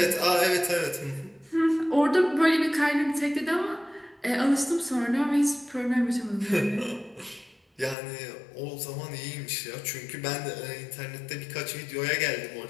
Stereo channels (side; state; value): right; drops out; at 8.0 s